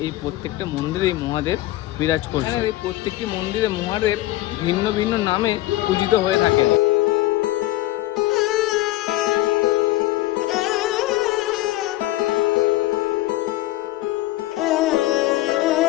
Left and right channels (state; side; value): quieter; right; 16.8 dB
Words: এই প্রত্যেকটা মন্দিরেই মহাদেব বিরাজ করছেন। এই প্রত্যেকটি মন্দিরে মহাদেব ভিন্ন ভিন্ন নামে পূজিত হয়ে থাকেন।